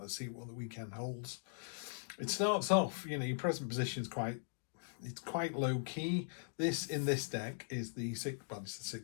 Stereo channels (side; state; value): right; silent; digital silence